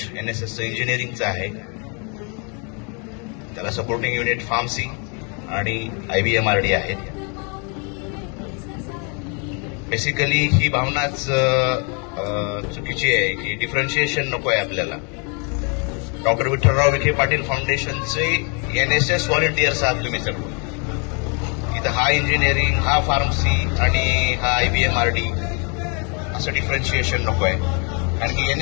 NSSचं इंजिनिअरिंगचं आहे. त्याला सपोर्टिंग युनिट फार्मसी आणि IBMRD आहेत. बेसिकली ही भावनाच चुकीची आहे की डिफरन्शिएशन नको आहे आपल्याला. डॉक्टर विठ्ठलराव विखे पाटील फाउंडेशनचे NSS व्हॉलंटियर्स आहात तुम्ही सर्व. इथं हा इंजिनिअरिंग, हा फार्मसी आणि हा IBMRD असं डिफरन्शिएशन नको आहे. कारण की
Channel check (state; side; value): quieter; right; 36.2 dB